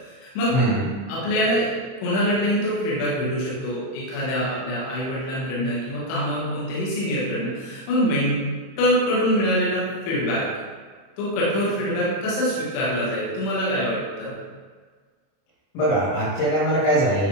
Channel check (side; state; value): right; late; 30 ms